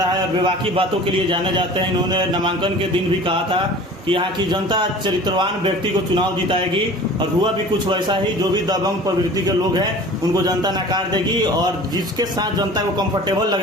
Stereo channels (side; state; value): both; normal; correlation 0.42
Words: है और विवाकी बातों के लिए जाने जाते हैं। इन्होंने नामांकन के दिन भी कहा था कि यहाँ की जनता चरित्रवान व्यक्ति को चुनाव जिताएगी और हुआ भी कुछ वैसा ही। जो भी दबंग प्रवृत्ति के लोग हैं उनको जनता नकार देगी और जिसके साथ जनता को कंफर्टेबल